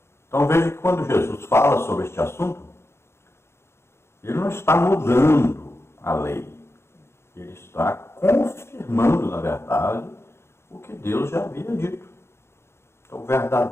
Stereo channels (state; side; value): late; right; 0.12 ms